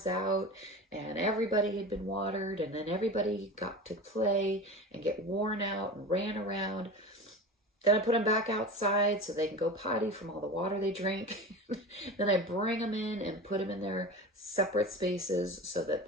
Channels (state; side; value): normal; both; correlation 0.30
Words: out, and everybody had been watered, and then everybody got to play and get worn out and ran around. Then I put them back outside so they can go potty from all the water they drink. Then I bring them in and put them in their separate spaces so that